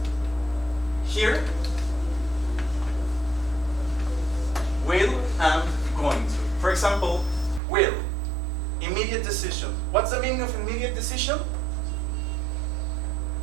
here, will and going to. For example, will, immediate decision. What's the meaning of immediate decision?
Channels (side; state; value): left; drops out; at 7.6 s